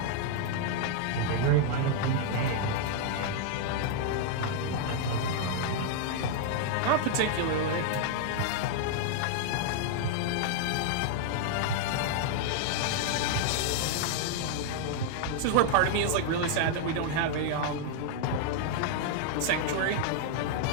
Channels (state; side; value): different; both; correlation 0.00